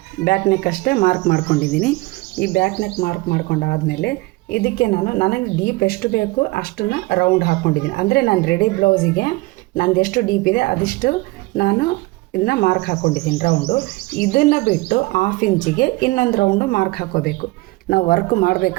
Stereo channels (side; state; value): left; quieter; 22.4 dB